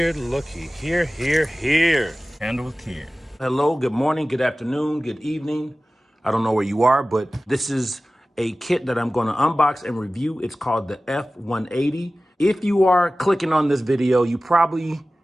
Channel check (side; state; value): both; normal; correlation 0.97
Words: looky here, here. Handle with care. Hello, good morning, good afternoon, good evening. I don't know where you are, but this is a kit that I'm going to unbox and review. It's called the F180. If you are clicking on this video, you probably